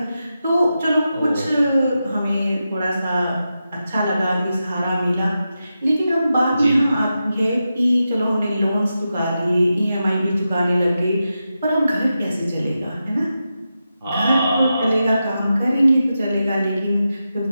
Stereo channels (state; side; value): inverted; both; correlation -0.90